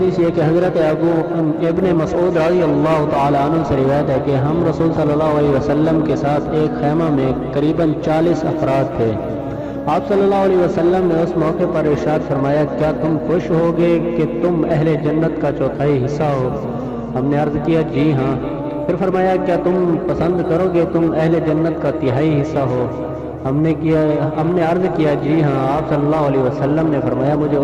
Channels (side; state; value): both; identical; correlation 1.00